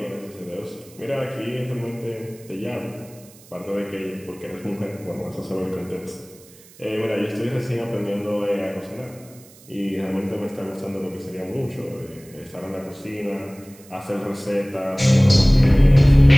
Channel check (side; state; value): right; noise; hiss, 24 dB below the sound